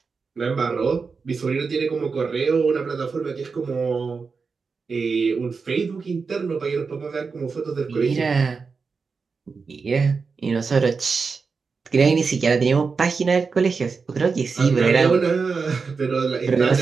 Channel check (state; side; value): quieter; left; 4.9 dB